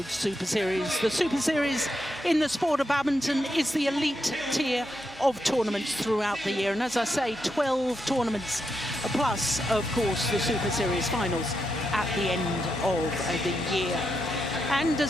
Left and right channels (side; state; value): both; normal; correlation 0.84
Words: Superseries. The Super Series in the sport of badminton is the elite tier of tournaments throughout the year. And as I say, 12 tournaments plus, of course, the Super Series finals at the end of the year. And